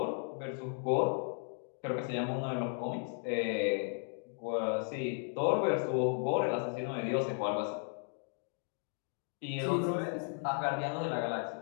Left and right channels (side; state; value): right; silent; 54 dB below the other